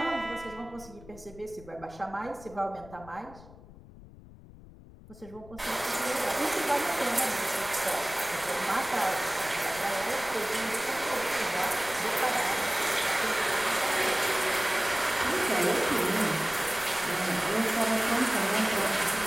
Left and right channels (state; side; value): noise; left; rumble, 19 dB below the sound